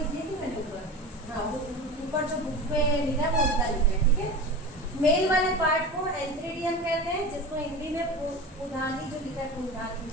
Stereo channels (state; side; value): normal; both; correlation 0.31